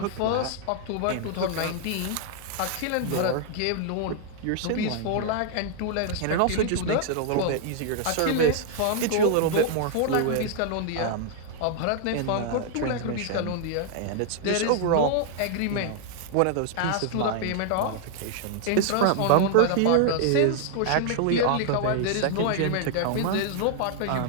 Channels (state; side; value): different; both; correlation 0.00